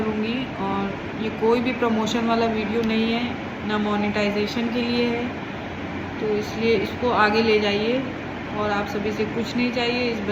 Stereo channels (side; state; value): both; identical; correlation 1.00